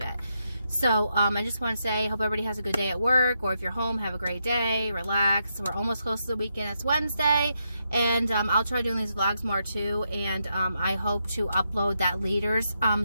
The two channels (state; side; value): inverted; both; correlation -0.82